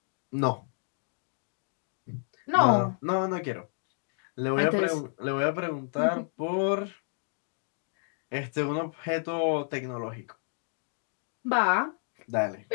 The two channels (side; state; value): right; silent; 57 dB below the other